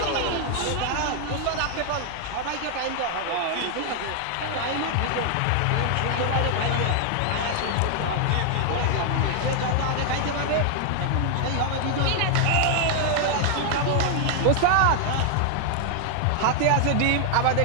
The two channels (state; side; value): different; both; correlation 0.00